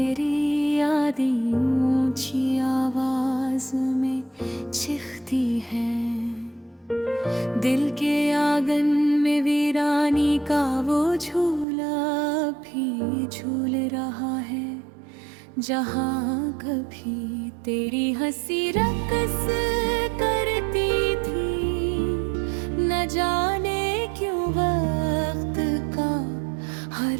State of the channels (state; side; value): drops out; left; at 11.7 s